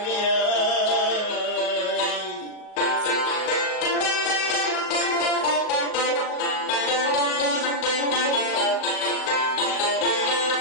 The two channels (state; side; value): late; right; 38 ms